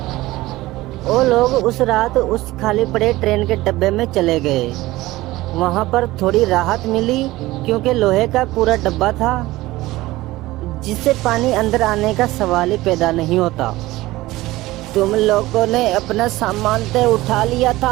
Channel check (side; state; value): left; quieter; 18.2 dB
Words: वो लोग उस रात उस खाली पड़े ट्रेन के डब्बे में चले गए। वहाँ पर थोड़ी राहत मिली क्योंकि लोहे का पूरा डब्बा था जिससे पानी अंदर आने का सवाल ही पैदा नहीं होता। तुम लोगों ने अपना सामान तो उठा लिया